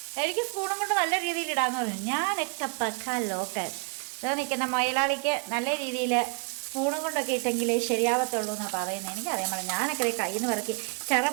എനിക്ക് സ്പൂണും കൊണ്ട് നല്ല രീതിയിൽ ഇടാന്ന് പറഞ്ഞു. ഞാനൊക്കെ പക്കാ ലോക്കൽ. ഇതാ നിൽക്കുന്ന മൊയലാളിക്ക് നല്ല രീതിയിൽ സ്പൂണും കൊണ്ടൊക്കെ ഇട്ടെങ്കിലേ ശരിയാവത്തുള്ളൂ എന്നാണ് പറയുന്നത്. എനിക്കറിയാൻ പാടില്ല. ഞാനൊക്കെ കയ്യിൽ നിന്ന് പറക്കി ചെറ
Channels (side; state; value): left; quieter; 39.7 dB